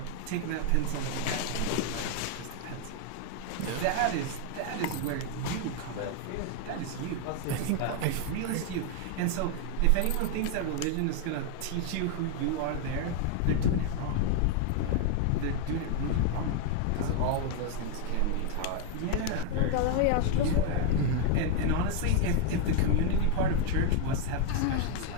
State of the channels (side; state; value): both; different; correlation 0.00